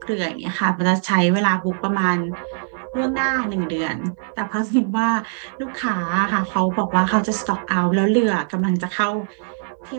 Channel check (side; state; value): left; silent; 58 dB below the other